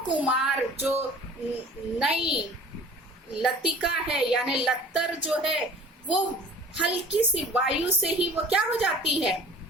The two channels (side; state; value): both; normal; correlation 0.46